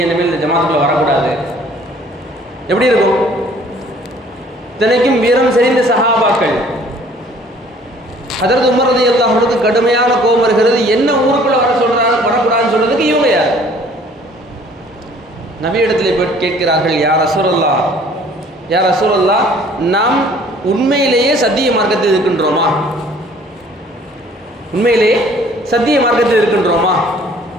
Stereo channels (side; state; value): both; normal; correlation 0.55